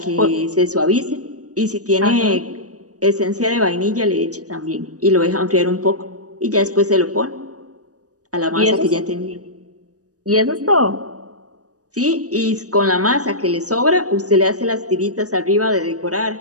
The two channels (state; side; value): late; left; 0.67 ms